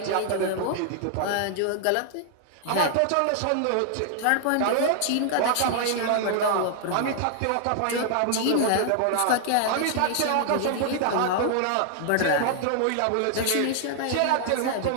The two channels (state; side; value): different; both; correlation 0.00